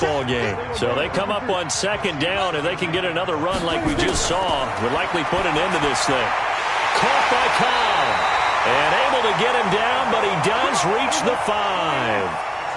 game. So they come up on 2nd down, and they can get another run like we just saw. Would likely put an end to this thing. Caught by Cobb. And able to get him down, but he does reach the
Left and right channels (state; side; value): identical; both; correlation 1.00